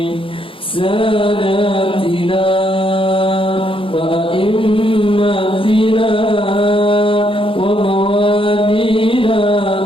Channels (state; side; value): late; right; 0.26 ms